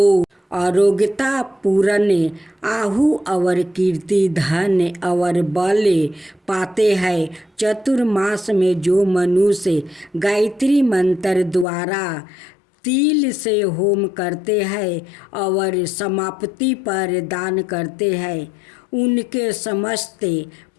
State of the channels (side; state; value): right; drops out; at 11.7 s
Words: आरोग्यता पूर्ण आहु और कीर्ति धन और बल पाते हैं। चतुर्मास में जो मनुष्य गायत्री मंत्र द्वारा तिल से होम करते हैं और समाप्ति पर दान करते हैं उनके समस्त